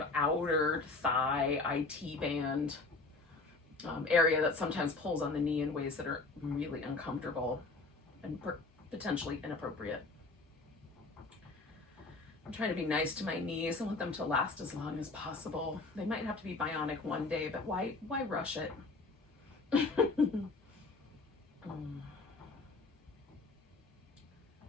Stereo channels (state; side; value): quieter; right; 3.6 dB